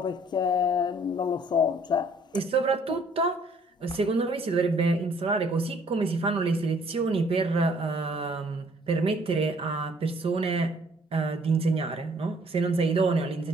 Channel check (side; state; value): both; normal; correlation 0.61